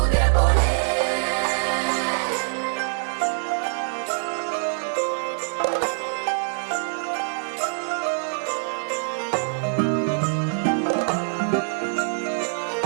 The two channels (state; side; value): silent; left; digital silence